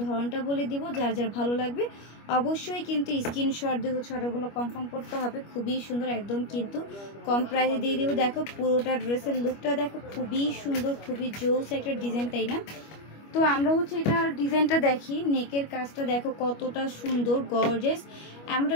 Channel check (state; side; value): late; right; 25 ms